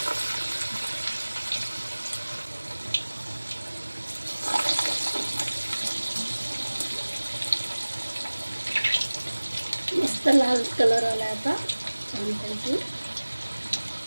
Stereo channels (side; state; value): both; inverted; correlation -1.00